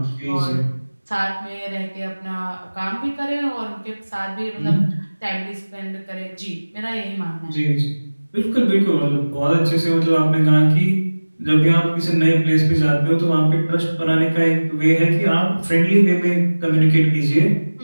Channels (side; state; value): both; inverted; correlation -1.00